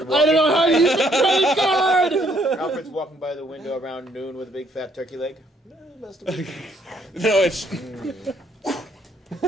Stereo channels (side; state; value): both; normal; correlation 0.68